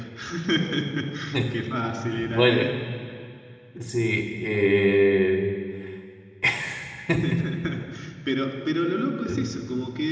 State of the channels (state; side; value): identical; both; correlation 1.00